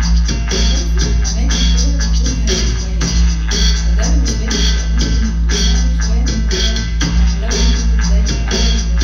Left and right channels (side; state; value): both; identical; correlation 1.00